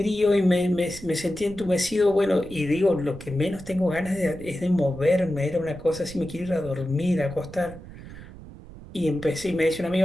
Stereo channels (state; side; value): noise; right; rumble, 16 dB below the sound